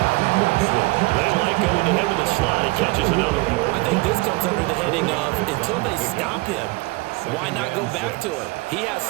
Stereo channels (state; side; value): quieter; left; 23.9 dB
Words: They like going to him in the slot. He catches another one. I think this comes under the heading of until they stop him, why not go back to him? He has